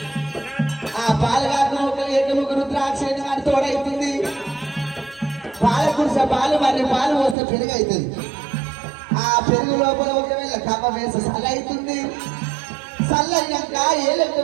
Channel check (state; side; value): drops out; left; at 7.4 s